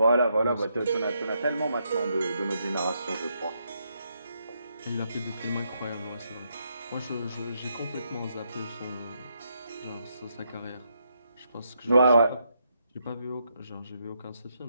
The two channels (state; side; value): inverted; both; correlation -0.78